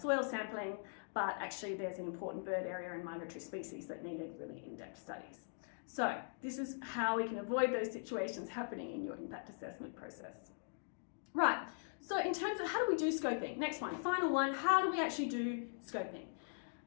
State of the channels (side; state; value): right; silent; digital silence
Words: sampling, but actually there's an important bird area and migratory species that needed really in-depth studies. So this is how we can avoid those situations happening in your impact assessment process. Right, so in terms of how do we do scoping? Next one, final one, how do we actually do scoping?